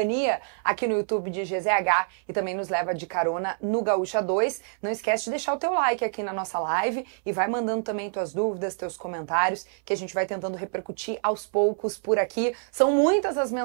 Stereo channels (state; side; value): silent; left; 61 dB below the other